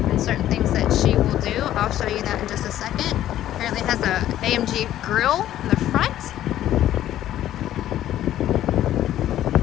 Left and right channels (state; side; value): quieter; right; 12.6 dB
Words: certain things that she will do. I'll show you that in just a second. Apparently it has a AMG grille in the front.